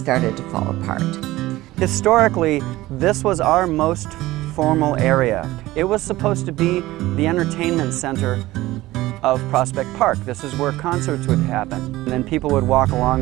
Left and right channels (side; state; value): left; quieter; 17.5 dB